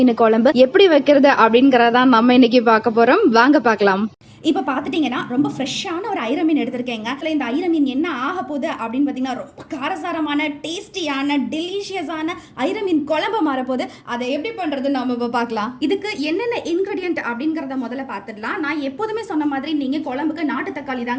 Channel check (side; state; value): both; identical; correlation 1.00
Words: குழம்பு எப்படி வைக்கிறது அப்படிங்கறதான் நம்ம இன்னைக்கு பார்க்க போறோம். வாங்க பார்க்கலாம். இப்போ பார்த்துட்டிங்கன்னா ரொம்ப ஃப்ரெஷ்ஷான ஒரு ஐர மீன் எடுத்திருக்கேங்க. அதில் இந்த ஐர மீன் என்ன ஆக போகுது அப்படின்னு பார்த்தீங்கன்னா, ரொம்ப காரசாரமான டேஸ்டியான டெலிஷியஸான ஐர மீன் குழம்பு மாறப்போகுது. அதை எப்படி பண்ணுறது நம்ம இப்போ பார்க்கலாம். இதுக்கு என்னென்ன இன்க்ரீடியன்ட் அப்படிங்கிறத முதல்ல பார்த்துடலாம். நான் எப்போதுமே சொன்ன மாதிரி நீங்கள் குழம்புக்கு நாட்டு தக்காளி